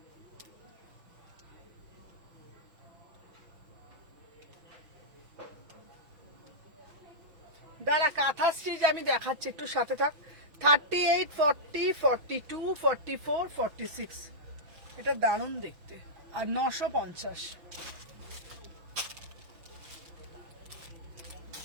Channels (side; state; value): left; late; 5.9 ms